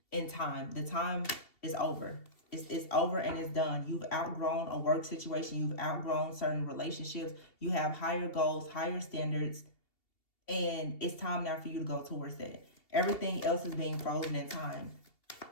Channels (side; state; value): right; late; 2.7 ms